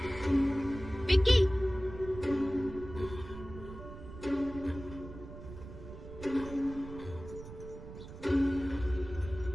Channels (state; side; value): noise; right; rumble, 13 dB below the sound